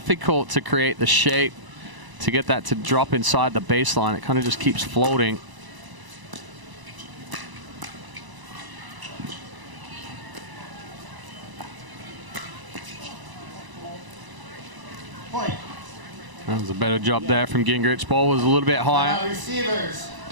to create the shape to get that to drop inside the baseline. It kind of just keeps floating. That was a better job there from Gingrich. Ball was a little bit higher.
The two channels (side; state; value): left; late; 1.0 ms